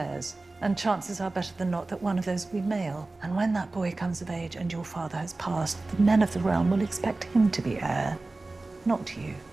and chances are better than not that one of those will be male. And when that boy comes of age and your father has passed, the men of the realm will expect him to be heir, not you.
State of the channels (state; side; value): quieter; left; 3.2 dB